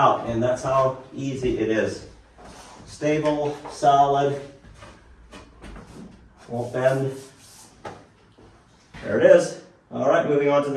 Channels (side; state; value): both; identical; correlation 1.00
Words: and that's how easy it is. Stable, solid, won't bend. There it is. All right, moving on to